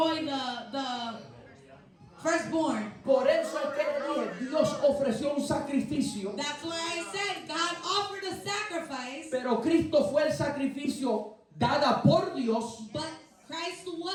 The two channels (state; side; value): identical; both; correlation 1.00